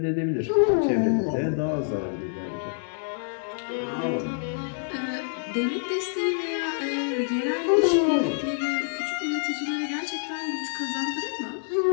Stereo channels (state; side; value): silent; right; digital silence